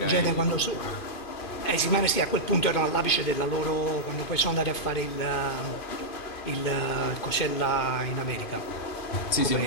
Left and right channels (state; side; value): late; right; 2.5 ms